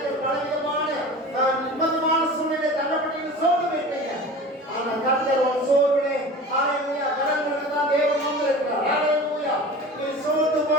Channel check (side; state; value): both; normal; correlation 0.36